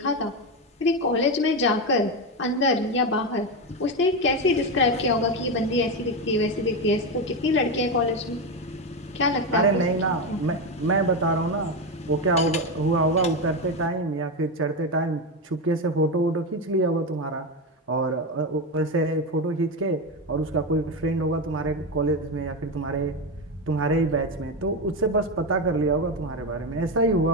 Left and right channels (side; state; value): both; normal; correlation 0.13